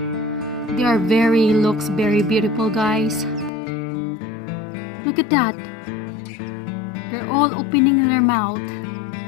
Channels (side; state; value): right; drops out; at 3.5 s